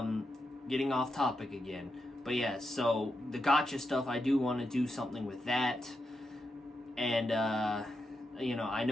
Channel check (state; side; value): normal; both; correlation 0.86